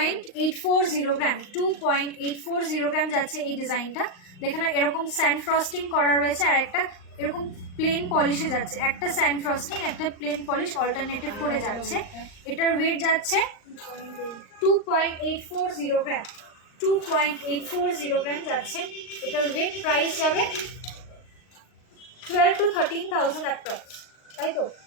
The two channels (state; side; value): late; right; 39 ms